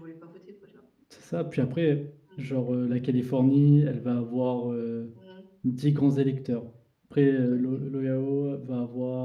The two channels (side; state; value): both; identical; correlation 1.00